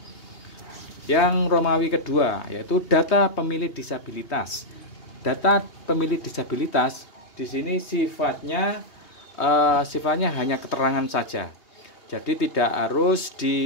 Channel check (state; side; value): late; right; 2.8 ms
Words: Yang Romawi kedua yaitu data pemilih disabilitas. Data pemilih disabilitas di sini sifatnya hanya keterangan saja. Jadi tidak harus